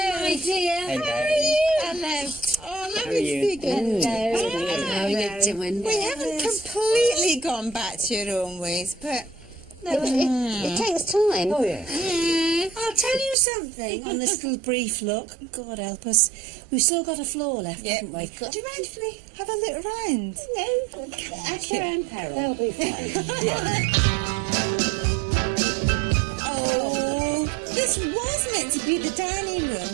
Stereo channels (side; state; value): left; drops out; at 13.4 s